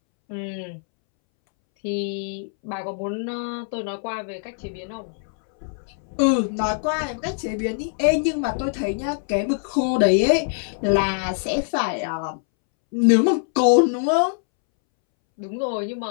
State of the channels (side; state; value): right; silent; 63 dB below the other